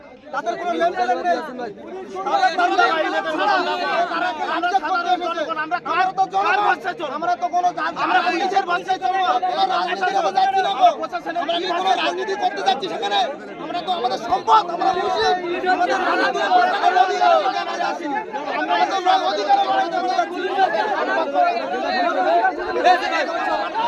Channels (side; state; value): both; identical; correlation 1.00